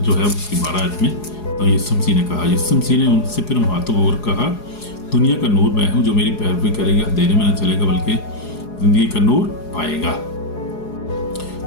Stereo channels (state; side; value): late; right; 4.8 ms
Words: है उसकी 12 आयत में, तो यीशु मसीह ने कहा, यीशु मसीह ने उनसे फिर हाथों और कहा, दुनिया का नूर मैं हूँ, जो मेरी पैरवी करेगा अंधेरे में न चलेगा बल्कि जिंदगी का नूर पाएगा।